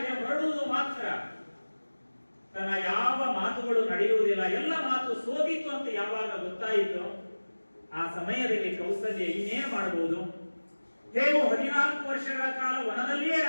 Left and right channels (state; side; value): inverted; both; correlation -1.00